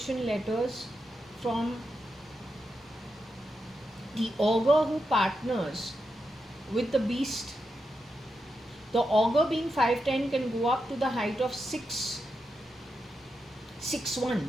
letters from the augur who partners with the beast. The augur being 5'10" can go up to the height of 6'1".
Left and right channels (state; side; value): normal; both; correlation 0.86